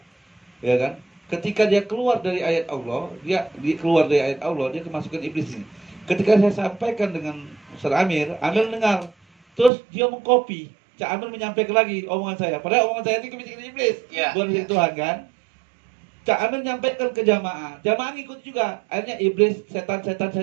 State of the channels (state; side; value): drops out; left; at 9.7 s